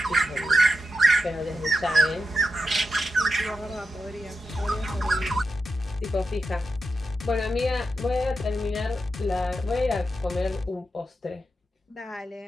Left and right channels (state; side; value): normal; both; correlation 0.88